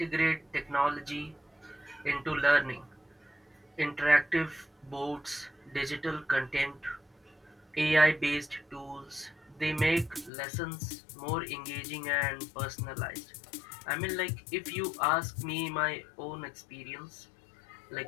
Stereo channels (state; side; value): drops out; right; at 10.3 s